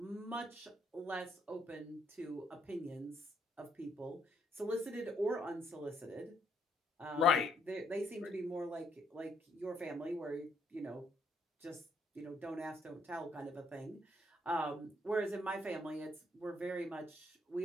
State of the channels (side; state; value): both; normal; correlation 0.71